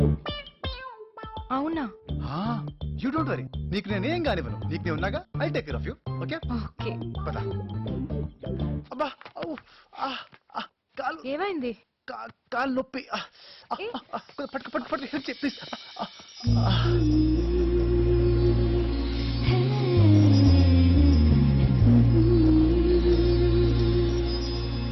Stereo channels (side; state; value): both; identical; correlation 1.00